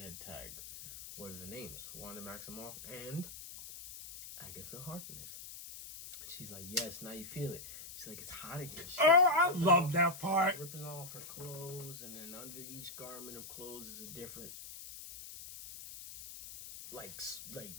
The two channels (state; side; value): noise; left; hiss, 12 dB below the sound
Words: tag. What are the names? Wanda Maximoff and Agatha Harkness." She's like, "Yes, now you feel it." She's like, "It's hot in here." She's Oh, I love that part. ripping off her clothes, and then under each garment of clothes is a different, like